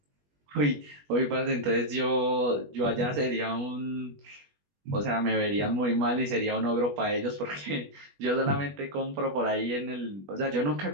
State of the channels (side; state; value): left; late; 21 ms